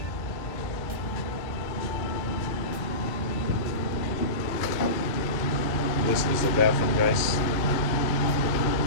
This is the bathroom, guys.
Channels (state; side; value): late; right; 1.6 ms